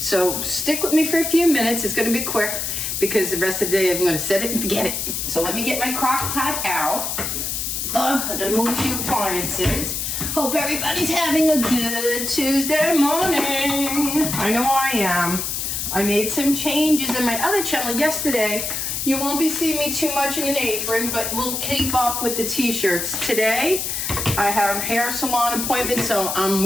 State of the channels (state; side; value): noise; left; hiss, 2 dB below the sound